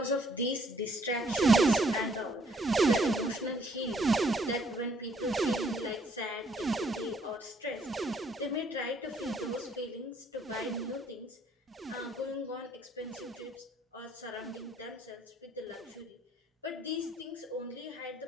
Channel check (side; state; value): both; normal; correlation 0.65